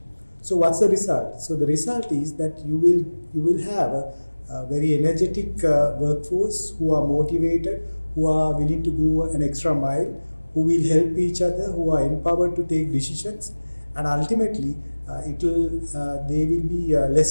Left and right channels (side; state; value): both; inverted; correlation -1.00